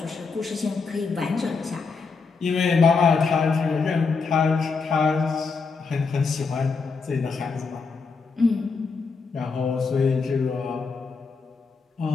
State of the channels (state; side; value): quieter; right; 4.8 dB